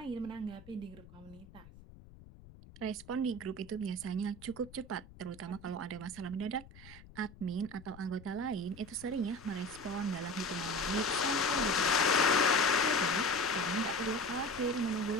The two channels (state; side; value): noise; left; rumble, 20 dB below the sound